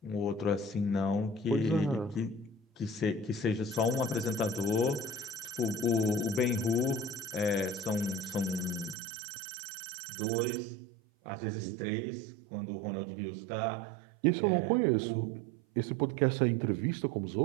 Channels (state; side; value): drops out; left; at 9.0 s